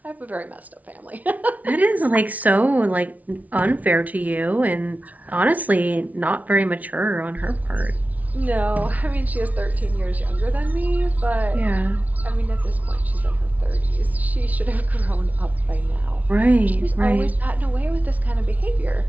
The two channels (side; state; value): left; late; 0.072 ms